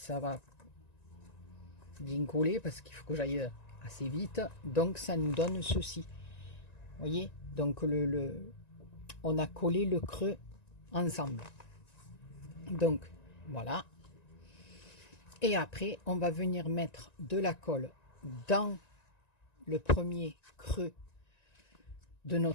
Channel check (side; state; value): right; late; 1.9 ms